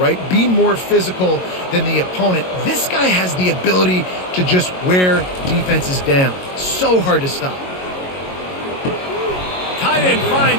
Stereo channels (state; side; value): late; right; 22 ms